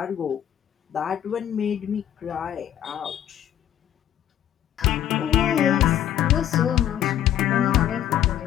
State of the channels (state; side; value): quieter; right; 11.0 dB